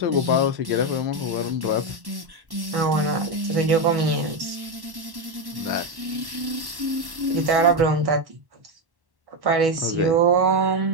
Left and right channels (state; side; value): late; left; 1.1 ms